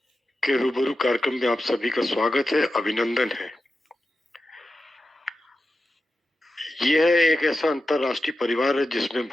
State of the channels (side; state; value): both; normal; correlation 0.91